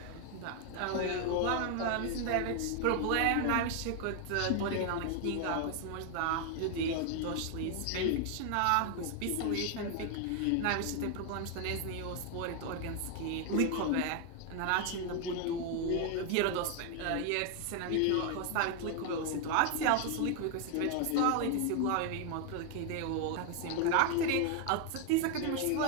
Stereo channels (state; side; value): different; both; correlation 0.00